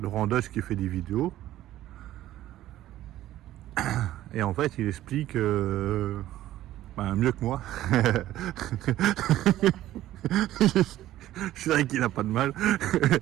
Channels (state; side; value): quieter; left; 14.0 dB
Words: Laurent Deutsch qui fait des vidéos. Et en fait, il explique mieux que moi. C'est vrai qu'il a pas de mal.